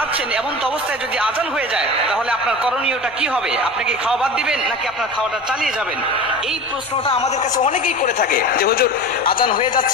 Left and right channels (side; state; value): both; normal; correlation 0.33